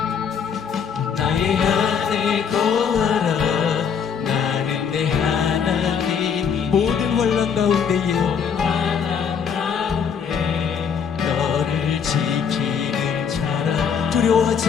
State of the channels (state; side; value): quieter; right; 6.9 dB